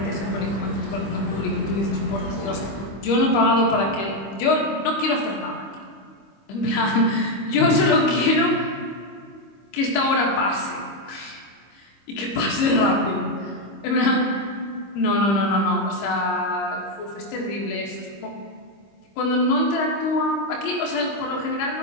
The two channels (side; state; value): right; late; 25 ms